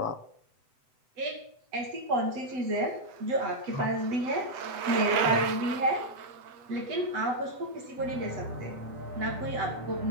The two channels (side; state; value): left; late; 7.9 ms